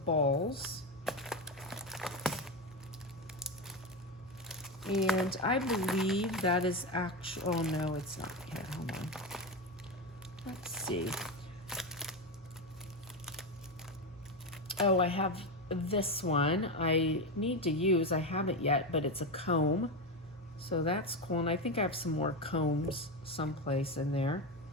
balls. And I believe that is actual, oh no, it's not yet, hold on. Let's see. Oh, I have this one I need to use. I haven't yet, but it's a comb. So that's cool. And I think I have some more combs someplace in there.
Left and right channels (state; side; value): normal; both; correlation 0.14